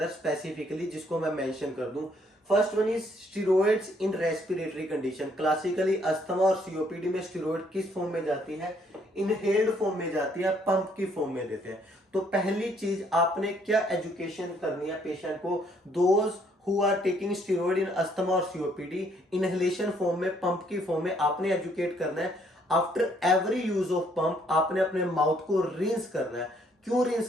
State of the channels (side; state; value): both; normal; correlation 0.67